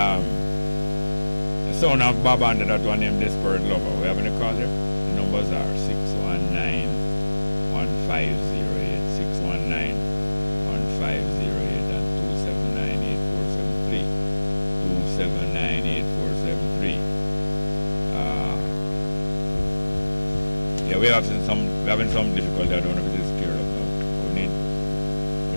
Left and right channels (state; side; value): inverted; both; correlation -1.00